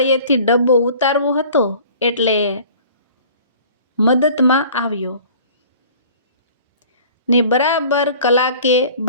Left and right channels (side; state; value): both; inverted; correlation -0.48